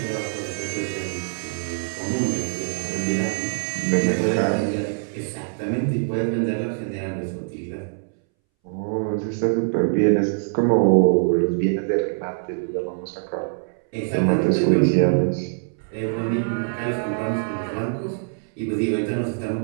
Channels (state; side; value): silent; left; 63 dB below the other